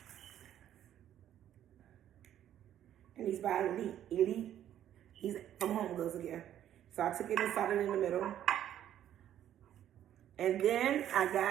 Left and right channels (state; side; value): quieter; left; 11.1 dB